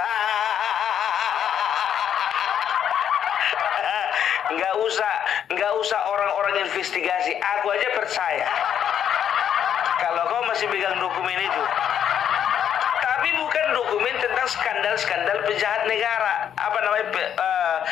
Nggak usah orang-orang investigasi. Aku aja percaya kalau kau masih pegang dokumen itu. Tapi bukan dokumen tentang skandal-skandal pejahat negara,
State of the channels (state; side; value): quieter; right; 9.1 dB